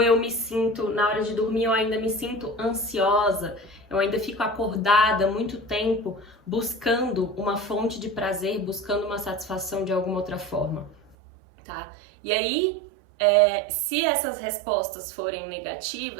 me sinto, na hora de dormir, eu ainda me sinto ansiosa, eu ainda fico acordada muito tempo buscando uma fonte de prazer, buscando uma satisfação de alguma outra forma. Tá? E aí, se essas respostas forem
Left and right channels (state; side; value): drops out; left; at 11.2 s